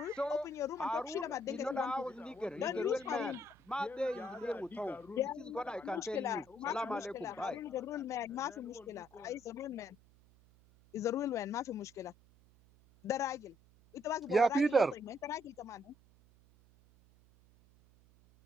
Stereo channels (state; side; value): noise; right; hum, 27 dB below the sound